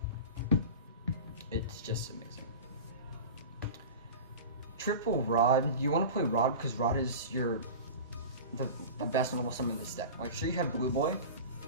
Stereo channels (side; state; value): both; inverted; correlation -0.32